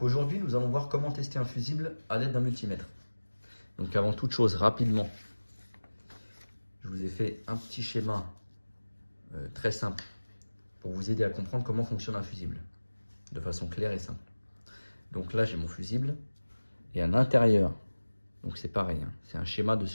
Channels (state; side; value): inverted; both; correlation -1.00